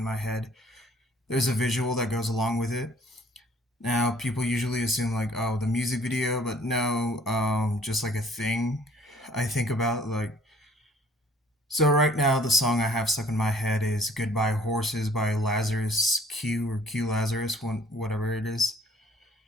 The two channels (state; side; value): normal; both; correlation 0.57